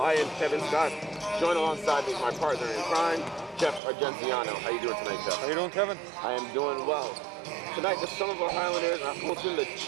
I am Kevin Scott, joined alongside me my partner in crime, Jeff Argenziano. How you doing tonight, Jeff? How you doing, Kevin? I am doing well. Tonight, the Somerville Highlanders are hosting the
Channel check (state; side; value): drops out; left; at 3.8 s